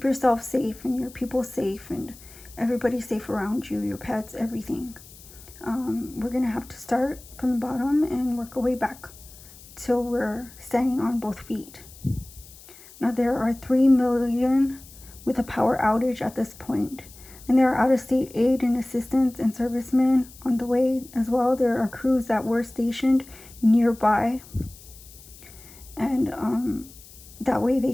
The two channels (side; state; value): left; noise; hiss, 20 dB below the sound